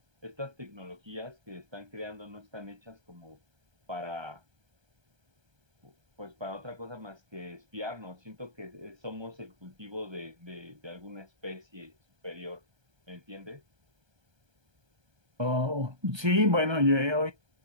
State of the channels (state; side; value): late; left; 1.3 ms